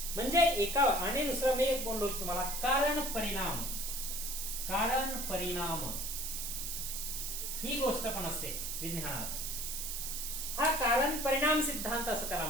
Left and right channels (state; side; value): noise; right; hiss, 4 dB below the sound